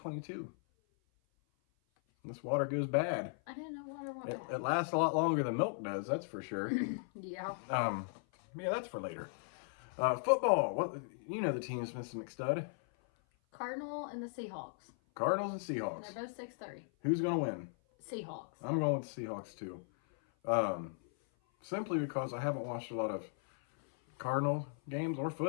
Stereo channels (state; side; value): silent; right; 53 dB below the other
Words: This water goes bad. I didn't know water went bad. It lasts a lot longer than milk does, that's for sure. Yeah. Yeah, that's for later. Football. What, you know the teams, Mrs. McStud. Cardinal and the Seahawks. Cardinals and And Seahawks. they're both 6-3. Who's going to win? Seahawks. I'm going with the Seahawks, too. Simply because I haven't watched a lot of Cardinal games or